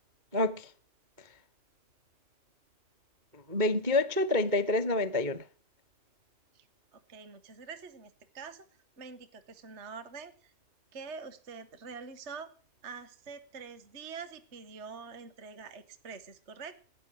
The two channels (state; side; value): late; left; 2.2 ms